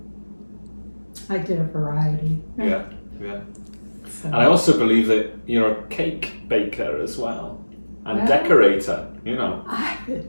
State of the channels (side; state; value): both; inverted; correlation -1.00